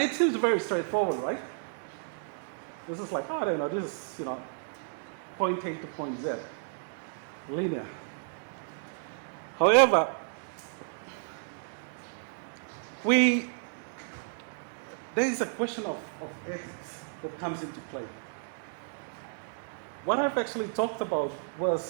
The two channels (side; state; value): left; silent; digital silence